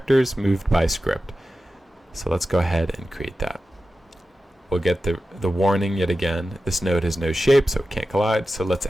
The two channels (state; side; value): normal; both; correlation 0.93